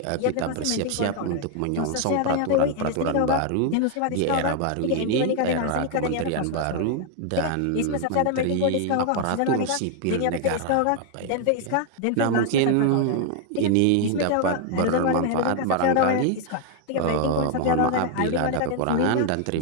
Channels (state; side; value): different; both; correlation 0.00